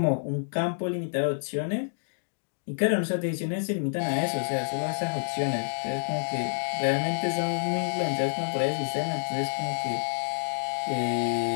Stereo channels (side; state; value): right; silent; digital silence